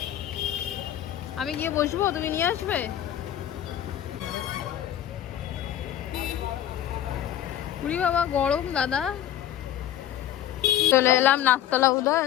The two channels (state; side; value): quieter; right; 11.4 dB